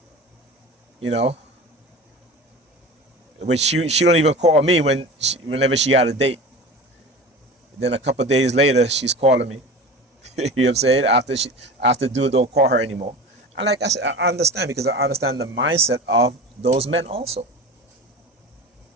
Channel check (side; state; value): both; normal; correlation 0.33